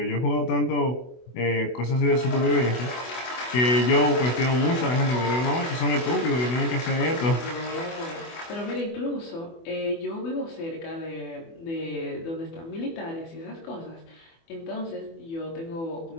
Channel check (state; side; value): late; right; 24 ms